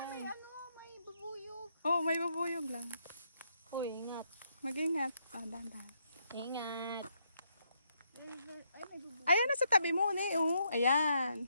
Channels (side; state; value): both; inverted; correlation -0.76